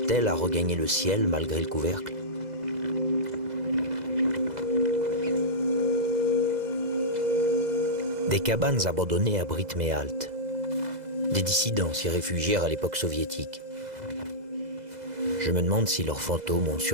à regagner le ciel malgré le couvercle? Des cabanes abandonnées abritent mes haltes. Des dissidents s'y réfugièrent à l'époque soviétique. Je me demande si leurs fantômes ont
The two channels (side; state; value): left; late; 2.0 ms